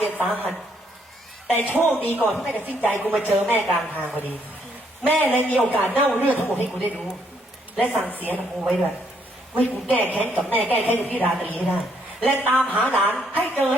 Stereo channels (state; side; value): normal; both; correlation 0.71